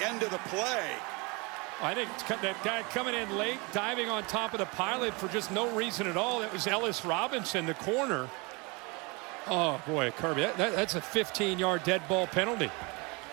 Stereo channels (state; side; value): quieter; left; 28.1 dB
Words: end of the play. I think that guy coming in late, diving on top of the pilot for just no reason at all. That was Ellis Robinson, the corner. Oh, boy, Kirby, that's a 15-yard dead ball penalty.